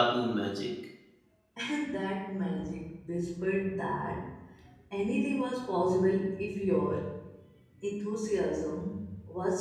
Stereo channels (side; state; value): both; identical; correlation 1.00